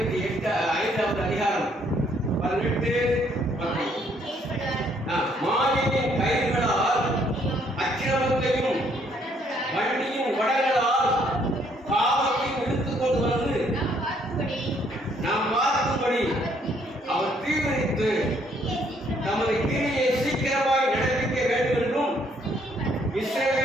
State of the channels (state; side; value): normal; both; correlation 0.67